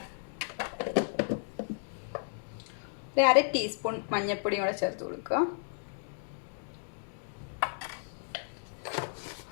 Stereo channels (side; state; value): right; silent; digital silence